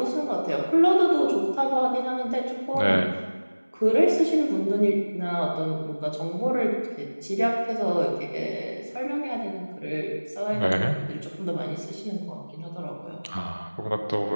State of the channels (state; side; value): inverted; both; correlation -1.00